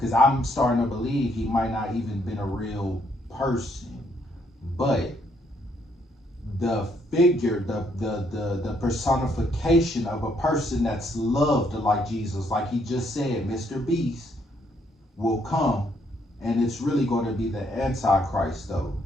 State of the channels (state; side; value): normal; both; correlation 0.71